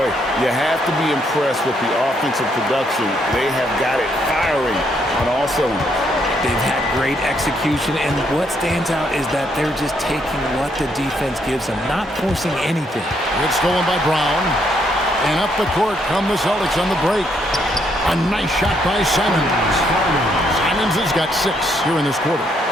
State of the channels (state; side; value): normal; both; correlation 0.73